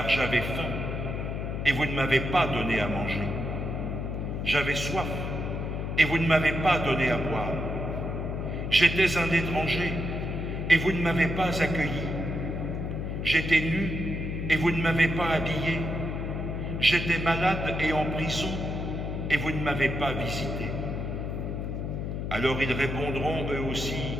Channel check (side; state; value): left; noise; hum, 3 dB below the sound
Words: j'avais faim et vous ne m'avez pas donné à manger. J'avais soif et vous ne m'avez pas donné à boire. J'étais un étranger et vous ne m'avez pas accueilli. J'étais nu et vous ne m'avez pas habillé. J'étais malade et en prison et vous ne m'avez pas visité. » Alors ils répondront eux aussi,